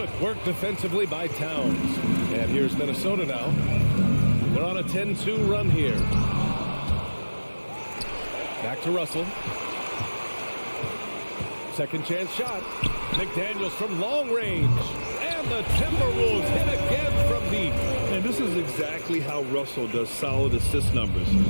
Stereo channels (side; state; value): both; inverted; correlation -1.00